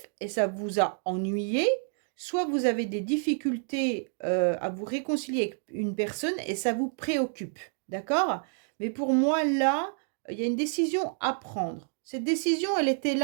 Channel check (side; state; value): left; silent; 58 dB below the other